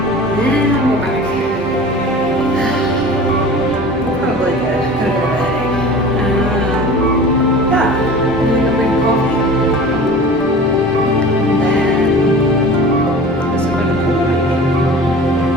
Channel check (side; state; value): both; normal; correlation 0.39